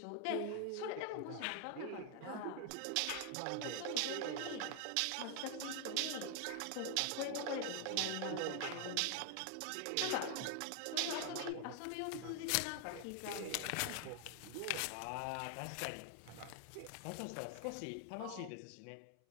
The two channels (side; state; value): both; different; correlation 0.00